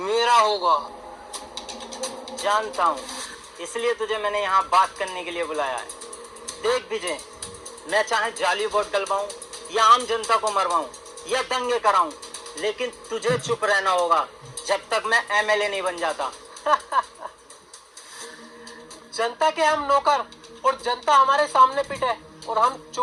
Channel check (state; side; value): identical; both; correlation 1.00